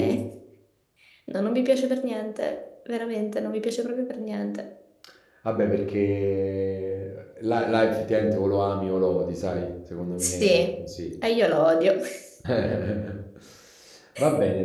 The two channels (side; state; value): both; identical; correlation 1.00